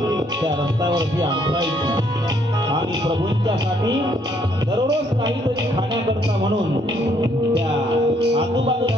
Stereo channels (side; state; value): both; normal; correlation 0.68